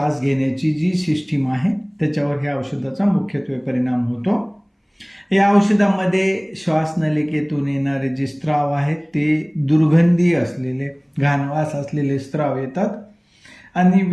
घेण्याची जी सिस्टीम आहे त्याच्यावर ह्या औषधाचा मुख्यत्वे परिणाम होतो. या औषधामध्ये श्वासनलिकेतून येणारे जे स्त्राव आहेत ते दुर्गंधी असलेले, घाणवास असलेले स्त्राव येतात आणि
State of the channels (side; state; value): both; identical; correlation 1.00